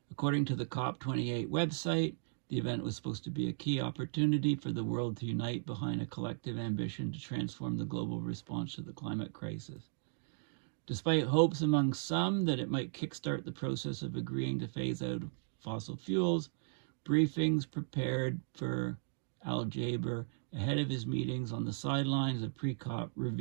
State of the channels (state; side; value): silent; left; digital silence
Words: According to the COP28 website, the event was supposed to be a key opportunity for the world to unite behind a collective ambition to transform the global response to the climate crisis. Despite hopes among some that it might kickstart the process of agreeing to phase out fossil fuels, briefings prepared for Al Jaber ahead of his meetings on the sidelines of pre-COP